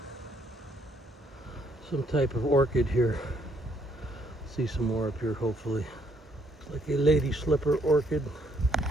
Some type of orchid here. See some more up here hopefully. Like a lady slipper orchid,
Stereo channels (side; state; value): both; normal; correlation 0.69